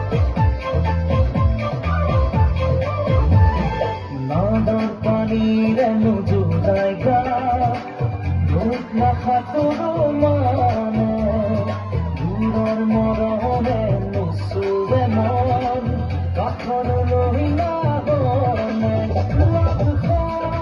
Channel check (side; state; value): both; identical; correlation 1.00